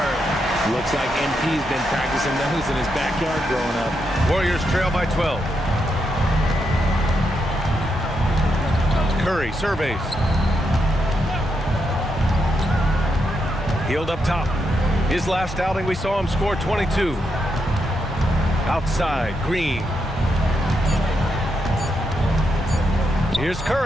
Looks like MP's been practicing those in his backyard growing up. Warriors trail by 12. Curry surveys. Hield up top. His last outing, we saw him score 22. Outside, Green. Here's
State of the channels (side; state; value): both; normal; correlation 0.82